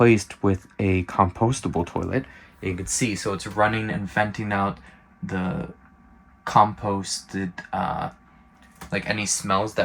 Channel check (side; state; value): both; identical; correlation 1.00